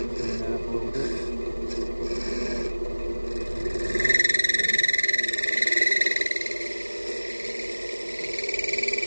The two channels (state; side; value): inverted; both; correlation -1.00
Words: that up a little bit.